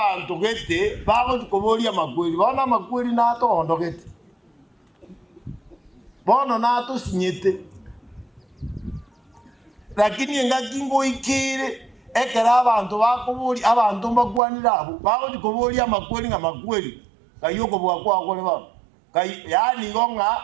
gete bagokoboria amakweri bona amakweri natondo gete bono nato sinyete lakini ngakingo ikire ekera abantu bakobori abantu mbakwanira abo bagokoboria amakweri ng'amakweri kayoko bwakwa okore ba yani gonga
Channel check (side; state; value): left; drops out; at 14.4 s